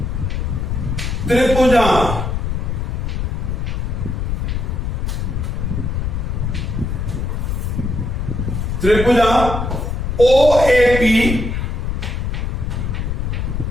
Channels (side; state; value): left; noise; rumble, 1 dB below the sound